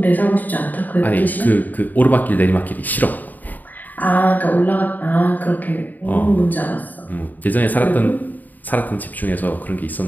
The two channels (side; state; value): right; late; 0.084 ms